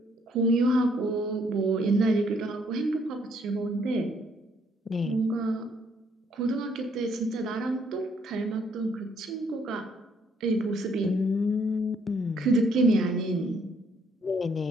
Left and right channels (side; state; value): both; normal; correlation 0.67